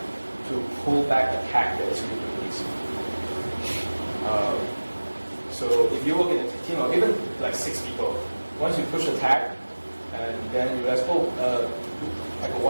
pull back a tag that is really released. So if you work in a team of even like 6 people, once you push a tag and then you realize, like a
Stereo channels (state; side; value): inverted; both; correlation -1.00